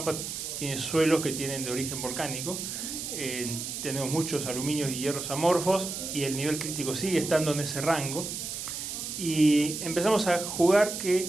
tiene suelos que tienen de origen volcánico, tenemos muchos aluminios y hierros amorfos y el nivel crítico sigue estando en ese rango. Y empezamos a jugar que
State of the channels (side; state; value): right; noise; hiss, 6 dB below the sound